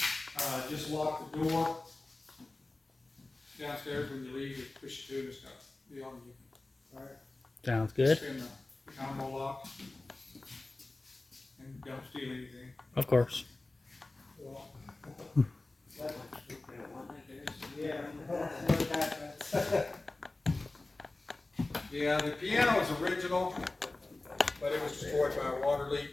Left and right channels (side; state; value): right; quieter; 3.0 dB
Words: Just lock the door downstairs when you leave. Just push it to and stuff. Be on you. All right. Sounds good. Spin the combo lock and don't steal anything. Of course. Yeah, the piano is original, but it was destroyed by a water leak.